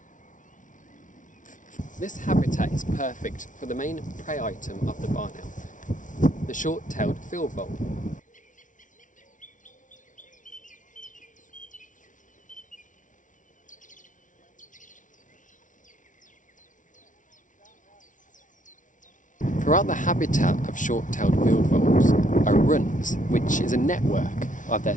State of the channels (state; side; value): late; right; 0.37 ms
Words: This habitat is perfect for the main prey item of the barn owl, the short-tailed field vole. Throughout the habitat of short-tailed field voles are runs, which is a network of their